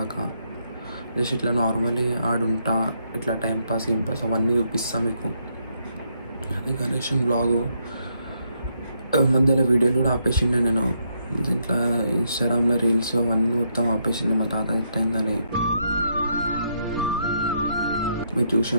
జస్ట్ ఇట్లా నార్మలీ ఆడుంటా, ఇట్లా టైంపాస్ పాస్ అవన్నీ చూపిస్తా మీకు. అది గణేషన్ వ్లాగు. మధ్యలో వీడియోలు కూడా ఆపేసిండే నేను. దీంట్లో ఇన్స్టాగ్రామ్లో రీల్స్ అవన్నీ మొత్తం ఆపేసింది మా తాత ఎట్టయిందని. మీరు చూసి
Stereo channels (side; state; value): both; inverted; correlation -0.76